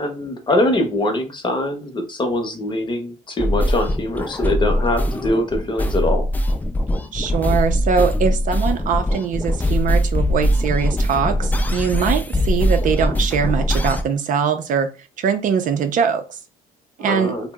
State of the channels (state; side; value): normal; both; correlation 0.64